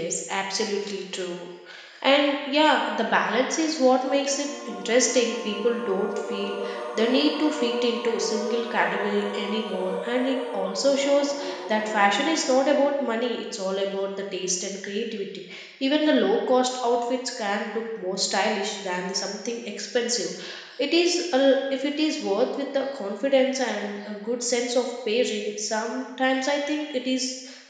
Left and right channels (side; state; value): both; identical; correlation 1.00